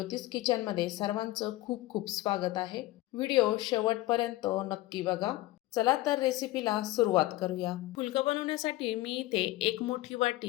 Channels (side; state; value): right; quieter; 17.6 dB